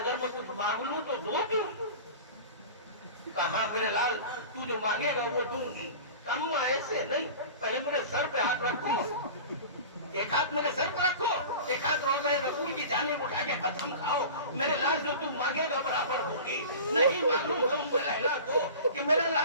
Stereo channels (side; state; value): both; inverted; correlation -0.37